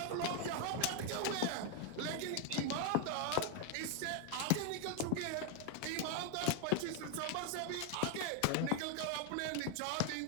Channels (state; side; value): different; both; correlation 0.01